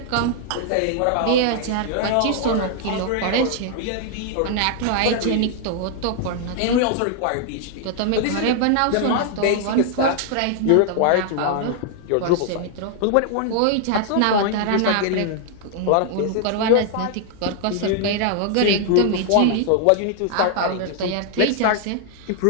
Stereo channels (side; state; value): both; different; correlation 0.00